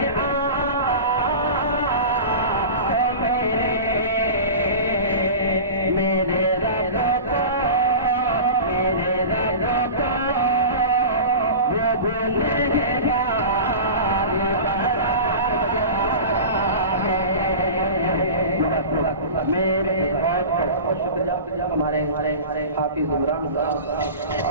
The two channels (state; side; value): inverted; both; correlation -0.32